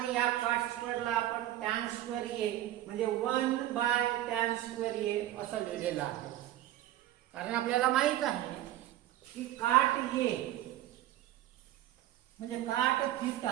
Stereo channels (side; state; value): left; quieter; 13.7 dB